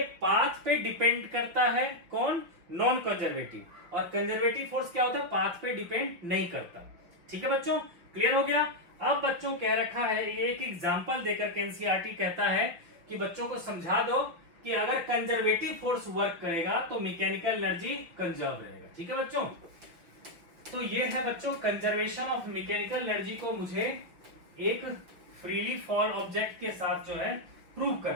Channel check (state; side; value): late; left; 5.7 ms